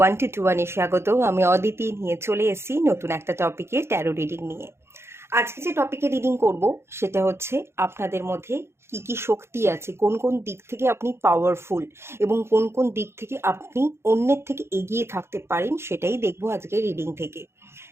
1 to 1 স্বাগত। আমি অদিতি নিয়ে চলে এসেছি নতুন একটা টপিকে, ট্যারো রিডিং নিয়ে। আজকে যে টপিকে রিডিং করব সেটা হচ্ছে আপনাদের মধ্যে কি কি শক্তি আছে, কোন কোন দিক থেকে আপনি পাওয়ারফুল এবং কোন কোন দিক থেকে আপনি অন্যের থেকে এগিয়ে থাকতে পারেন, সেটাই দেখবো আজকে রিডিং থেকে।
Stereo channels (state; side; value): late; left; 0.12 ms